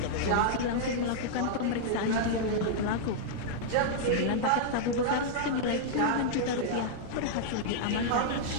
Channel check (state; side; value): different; both; correlation -0.02